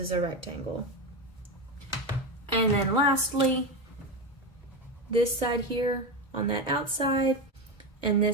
a rectangle. And then lastly, this side here on that outside and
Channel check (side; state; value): both; normal; correlation 0.16